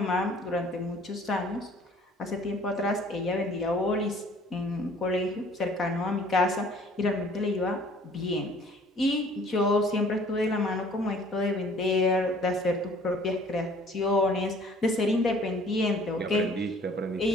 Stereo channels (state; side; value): normal; both; correlation 0.54